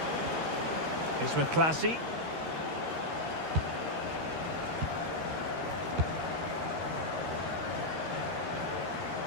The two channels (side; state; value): left; late; 13 ms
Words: It's with Clasie.